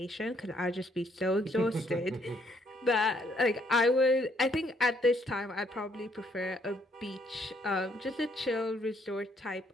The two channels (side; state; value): both; normal; correlation 0.69